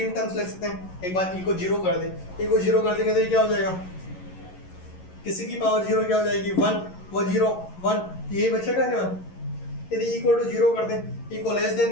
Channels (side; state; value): right; late; 11 ms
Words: टर्म्स लिख सकते हैं। एक बार ई को 0 कर दें, ई को 0 कर देंगे तो ये क्या हो जाएगा, किसी की पावर 0 क्या हो जाएगी 1, वो 0 1, यही बचेगा क्या। यदि इक्वल टू 0 कर दें, ई को लेस